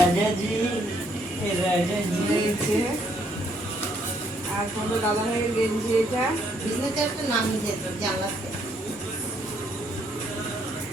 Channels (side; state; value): both; normal; correlation 0.70